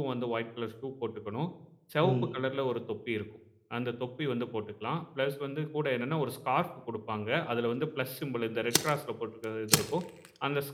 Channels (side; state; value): both; identical; correlation 1.00